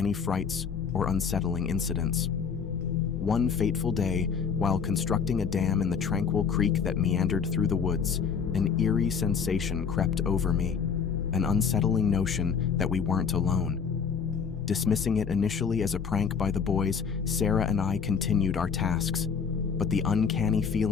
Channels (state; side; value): quieter; right; 6.4 dB